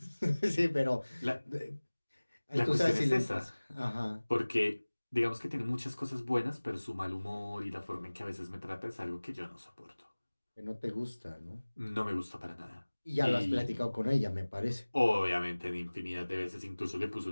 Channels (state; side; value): inverted; both; correlation -1.00